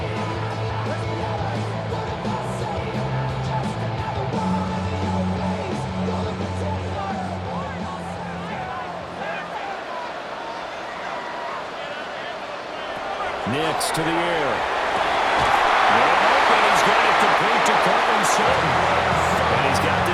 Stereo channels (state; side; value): identical; both; correlation 1.00